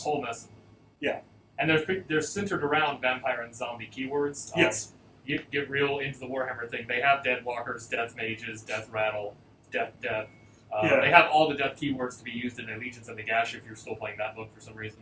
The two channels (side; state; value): both; identical; correlation 1.00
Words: mess. Yeah. And they're centered around vampire and zombie keywords. Yes. You get real into the Warhammer thing. They have dead walkers, death mages, death rattle, death. They have all the death keywords to be used in Allegiance and the Gash if you're still playing that book for some